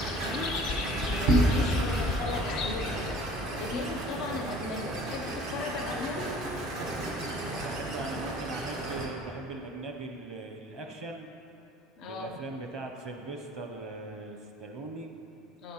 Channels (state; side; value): normal; both; correlation 0.50